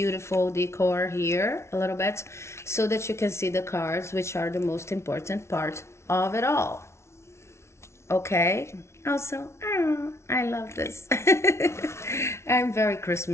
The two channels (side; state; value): right; late; 0.13 ms